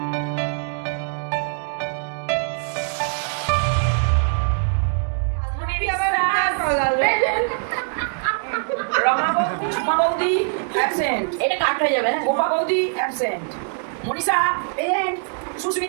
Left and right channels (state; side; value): silent; left; digital silence